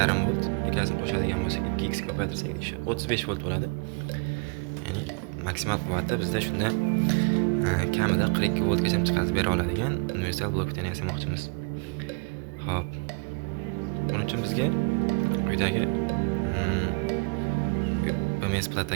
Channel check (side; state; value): left; quieter; 33.0 dB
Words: volt ikkasini qo'shadigan bo'lsak 2x ko'paytirsak 35 volt bo'ladi. Ya'ni maksimal quvvati bizda shunda kamida 42 voltgacha chiqarib bera oladigan universal blok tenni yasamoqchimiz. Xo'p. Buning uchun bizga quyidagi BMS